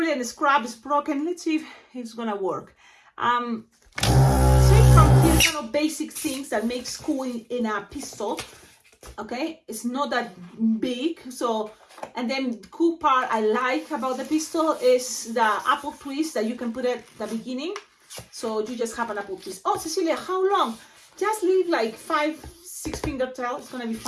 a scrap is broken. Let's see if it's gonna work. From here, kind of basic things that make school in a pistol. Okay, it's not that big. So, and then the cool part I like about the pistol is the apple twist that you can put at the beginning. So you just have an apple twist. Oh, Cecilia, how long? Just leave like 5-6 finger tail. It's gonna be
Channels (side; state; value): both; identical; correlation 1.00